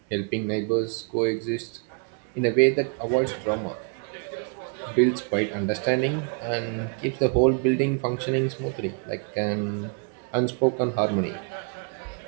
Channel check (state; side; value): quieter; left; 38.7 dB